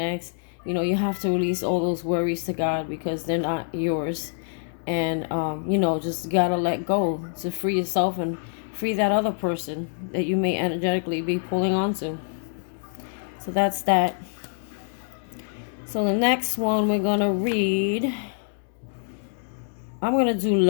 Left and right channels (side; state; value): right; silent; digital silence